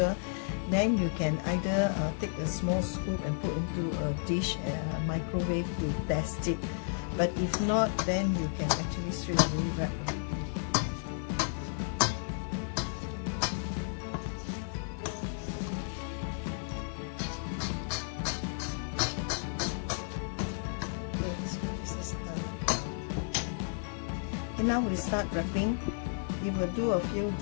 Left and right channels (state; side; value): silent; right; 56 dB below the other